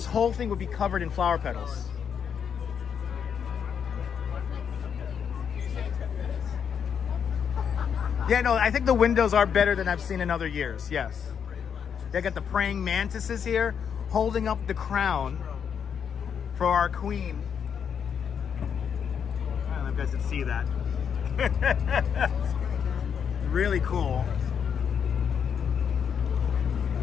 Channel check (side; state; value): right; quieter; 7.5 dB